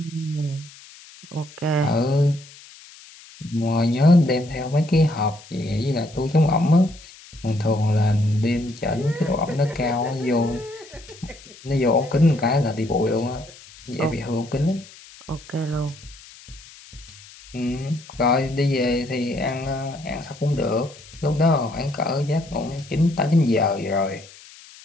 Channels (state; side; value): noise; left; hiss, 21 dB below the sound